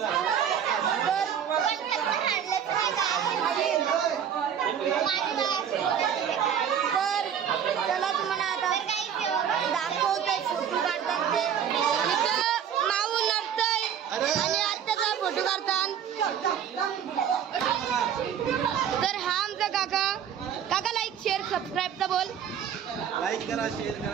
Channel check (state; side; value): quieter; left; 8.7 dB